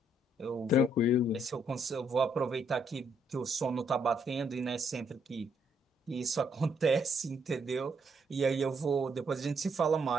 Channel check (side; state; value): both; normal; correlation 0.72